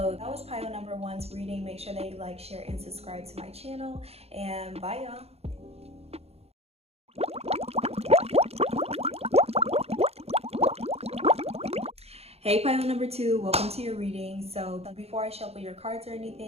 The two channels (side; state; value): left; late; 0.30 ms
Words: that was pile number one's reading. Make sure that you like, share, and subscribe to my channel, and bye y'all. Hey pile number two, welcome to your reading. So before I shuffle your cards or